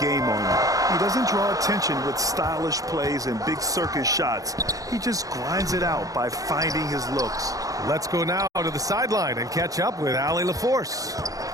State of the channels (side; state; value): left; late; 0.17 ms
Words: on you. He doesn't draw attention with stylish plays and big circus shots. He just grinds it out by finding his looks. Let's go now to the sideline and catch up with Allie LaForce.